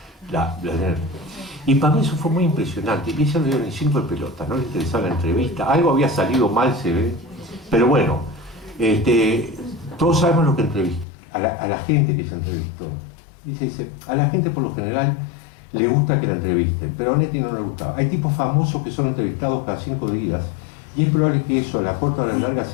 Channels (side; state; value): right; drops out; at 11.1 s